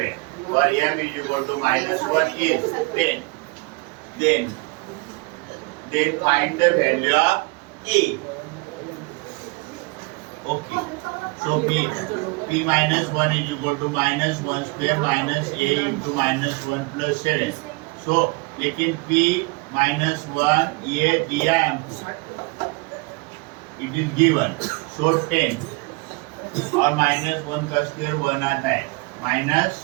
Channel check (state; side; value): quieter; left; 27.0 dB